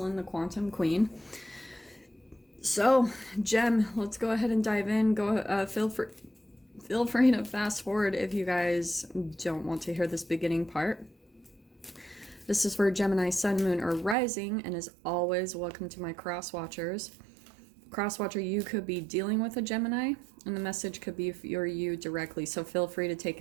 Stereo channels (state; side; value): drops out; left; at 14.2 s